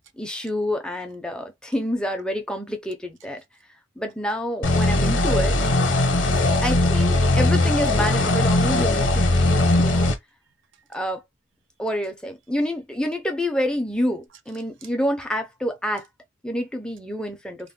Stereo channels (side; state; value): both; normal; correlation 0.69